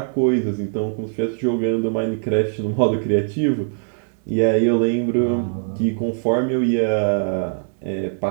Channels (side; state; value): left; silent; digital silence